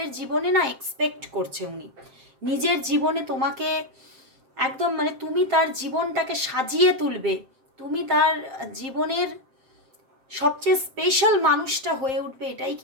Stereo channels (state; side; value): late; left; 7.6 ms